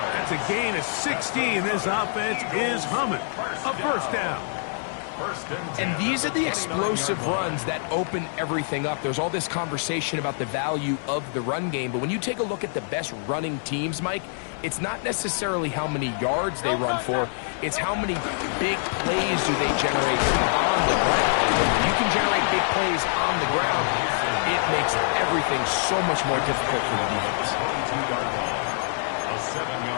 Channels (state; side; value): silent; right; digital silence